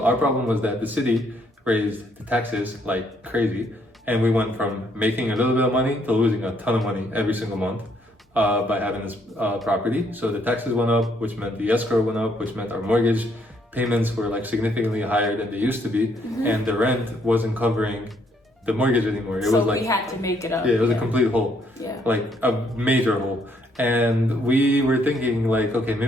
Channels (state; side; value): normal; both; correlation 0.70